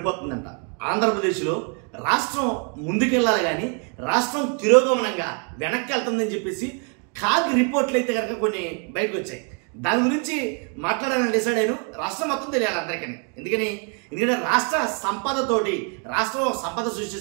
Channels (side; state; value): left; quieter; 39.6 dB